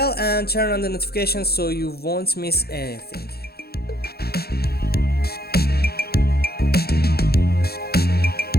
and turn on the notifications so you won't miss anything.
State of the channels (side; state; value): right; late; 0.46 ms